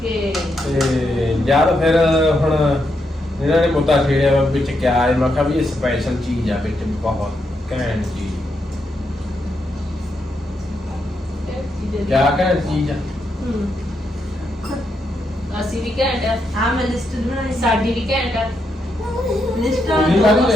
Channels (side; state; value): both; normal; correlation 0.81